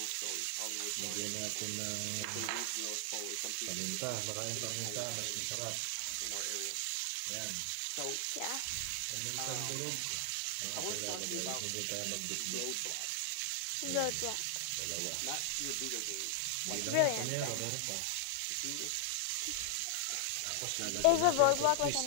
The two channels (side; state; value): both; different; correlation 0.00